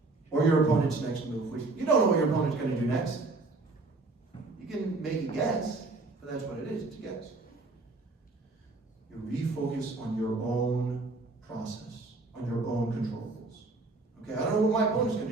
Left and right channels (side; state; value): left; quieter; 3.4 dB